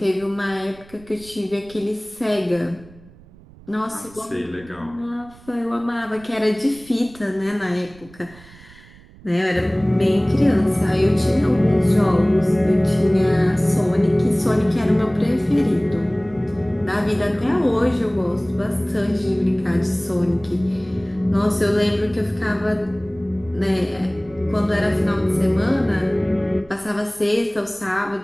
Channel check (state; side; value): noise; right; rumble, 23 dB below the sound